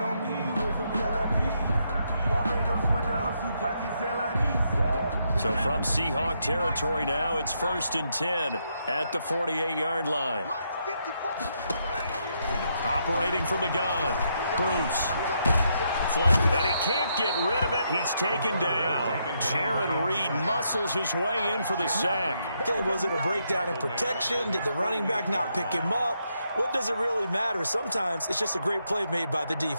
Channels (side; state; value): both; inverted; correlation -0.78